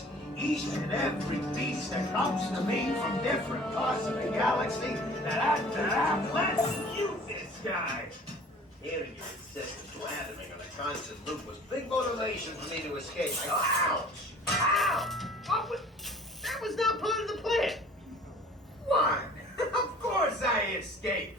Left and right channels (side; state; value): both; normal; correlation 0.48